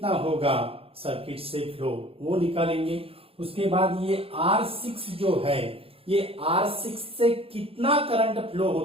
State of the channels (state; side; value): late; left; 0.27 ms